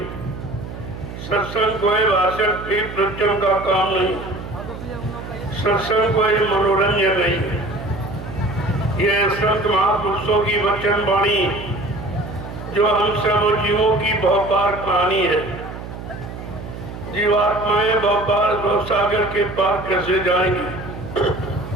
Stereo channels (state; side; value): noise; right; hum, 10 dB below the sound